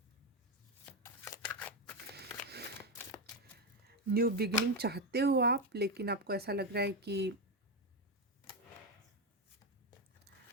New beginning चाहते हो आप, लेकिन आपको ऐसा लग रहा है कि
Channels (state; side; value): normal; both; correlation 0.09